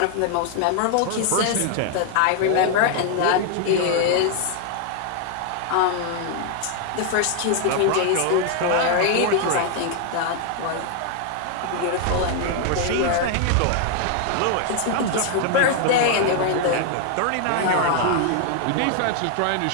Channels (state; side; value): different; both; correlation 0.00